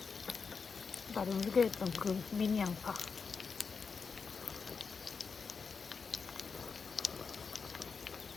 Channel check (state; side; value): quieter; right; 5.3 dB